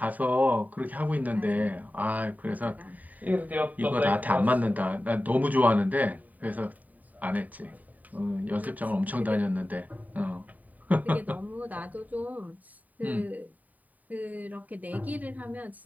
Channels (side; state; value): left; late; 0.076 ms